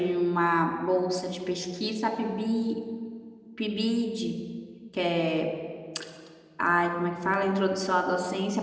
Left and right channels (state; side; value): identical; both; correlation 1.00